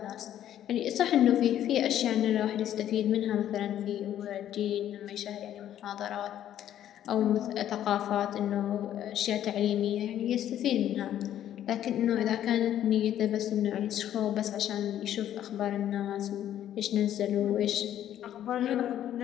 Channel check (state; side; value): quieter; right; 11.3 dB